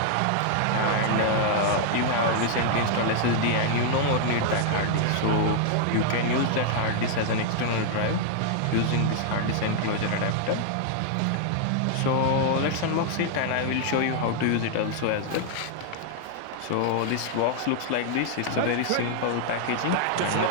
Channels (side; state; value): both; different; correlation 0.00